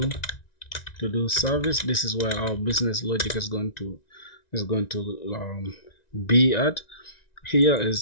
service. This is where our business logic is going to be at. Here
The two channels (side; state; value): right; late; 1.9 ms